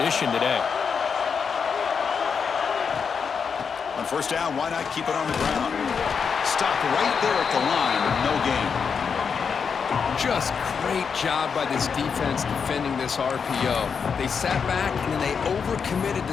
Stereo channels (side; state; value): right; quieter; 6.2 dB